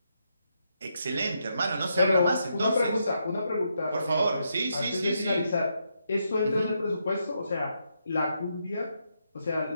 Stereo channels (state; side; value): inverted; both; correlation -0.80